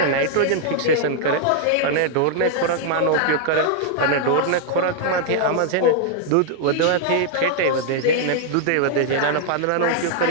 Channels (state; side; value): different; both; correlation 0.00